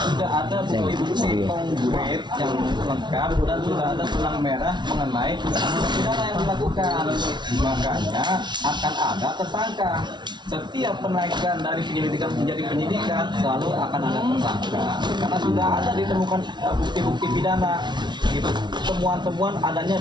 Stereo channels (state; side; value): late; left; 0.21 ms